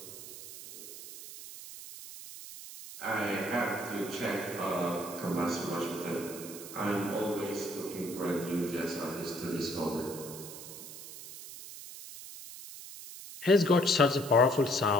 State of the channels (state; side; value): noise; right; hiss, 13 dB below the sound